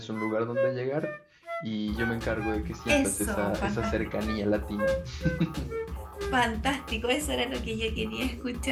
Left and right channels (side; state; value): both; identical; correlation 1.00